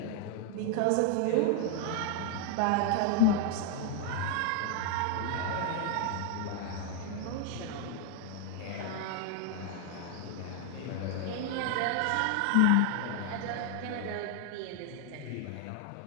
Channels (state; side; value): different; both; correlation 0.01